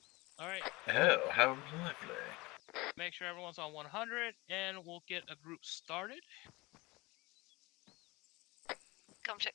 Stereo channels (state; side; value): quieter; right; 22.8 dB